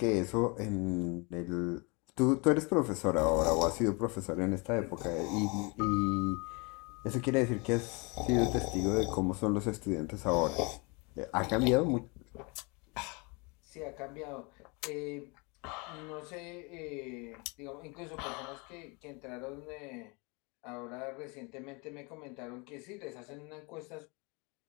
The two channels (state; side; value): quieter; right; 29.8 dB